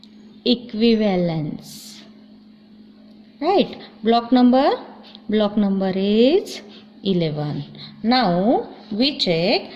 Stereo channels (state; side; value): identical; both; correlation 1.00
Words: equivalence, right? Block number is 11. Now we check